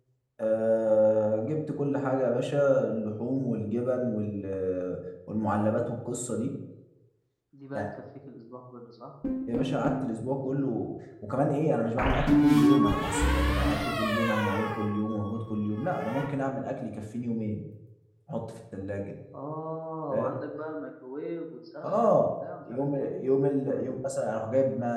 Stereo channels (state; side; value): identical; both; correlation 1.00